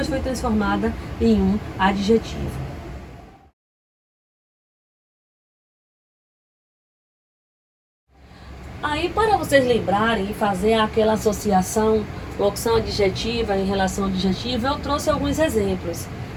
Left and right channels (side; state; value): both; identical; correlation 1.00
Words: foi transformada em um adjetivo. Aí, para vocês lembrarem e fazer aquela associação locução adjetiva em relação adjetiva, eu trouxe alguns exemplos.